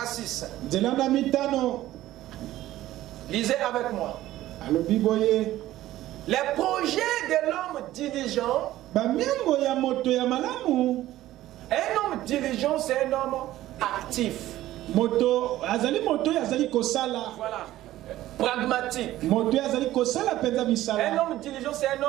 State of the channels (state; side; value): quieter; left; 14.8 dB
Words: à 6. Lisez avec moi. Les projets de l'homme diligent. Un homme diligent, c'est un homme actif. Voilà. Pragmatique. Un homme diligent, c'est un